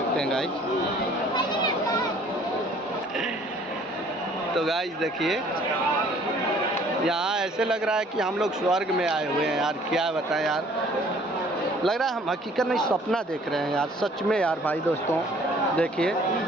हैं गाइस। तो गाइस देखिए यहाँ ऐसे लग रहा है कि हम लोग स्वर्ग में आए हुए हैं यार, क्या बताएं यार, लग रहा है हम हकीकत में सपना देख रहे हैं यार, सच में यार भाई दोस्तों देखिए।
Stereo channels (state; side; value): normal; both; correlation 0.56